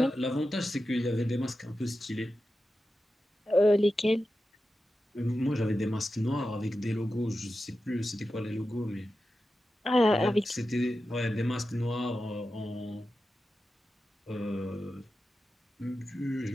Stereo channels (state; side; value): normal; both; correlation 0.92